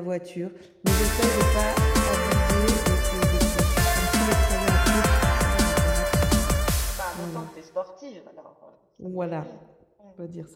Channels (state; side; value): identical; both; correlation 1.00